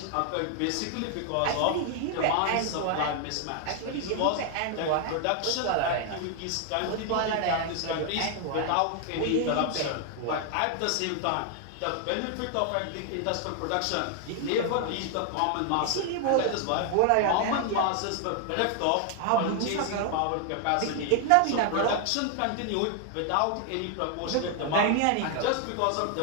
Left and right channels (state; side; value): different; both; correlation 0.00